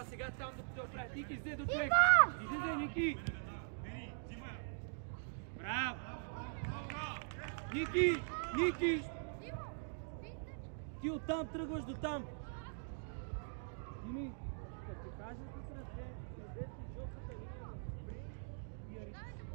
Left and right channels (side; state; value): left; silent; digital silence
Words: сега там, докато я оправят. Ники, излезе до човек. Излезе, Ники. Браво. Ники. Ти оттам тръгваш до там. Дими, като ти кажа тук ръце, излезе жълтата линия на Бри и Ари.